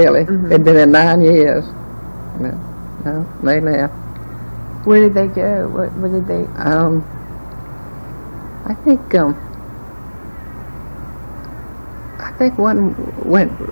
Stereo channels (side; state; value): both; inverted; correlation -1.00